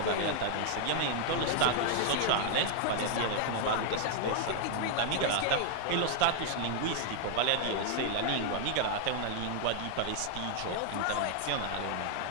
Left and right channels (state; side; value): different; both; correlation 0.00